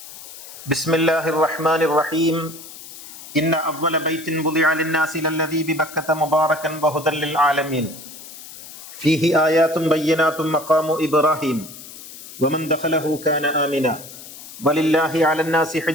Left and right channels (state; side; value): noise; left; hiss, 15 dB below the sound